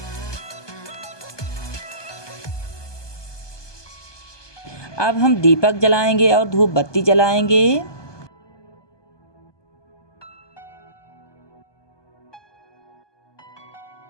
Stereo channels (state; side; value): late; right; 1.2 ms